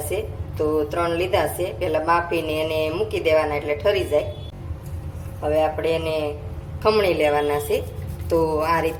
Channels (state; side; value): identical; both; correlation 1.00